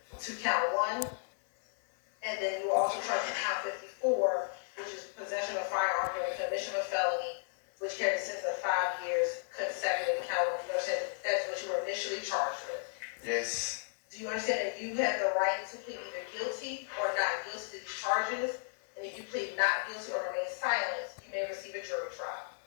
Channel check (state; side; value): silent; right; 55 dB below the other